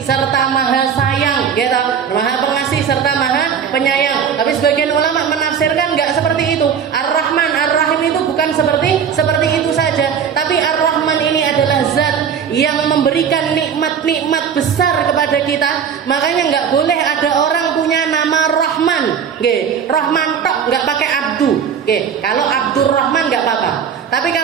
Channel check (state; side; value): quieter; left; 7.5 dB